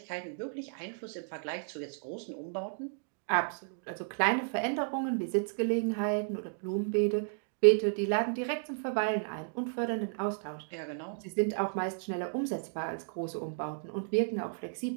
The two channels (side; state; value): left; silent; digital silence